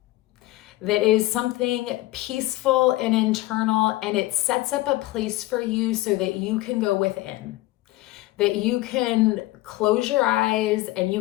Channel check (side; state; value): right; quieter; 18.3 dB